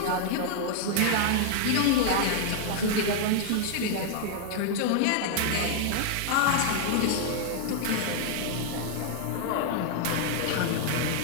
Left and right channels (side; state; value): both; different; correlation 0.00